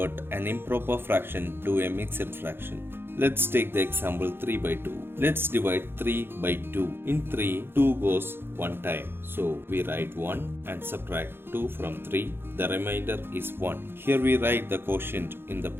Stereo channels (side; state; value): left; late; 0.11 ms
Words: an improper fraction to a mixed fraction. Let's take the example 3 by 2. Let's divide 3 by 2. In 3, 2 goes one time. So we write 1 and subtract 2 from 3. The remainder is 1. Here we write the quotient in the